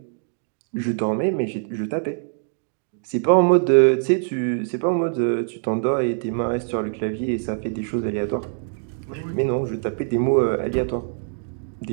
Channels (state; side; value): silent; left; digital silence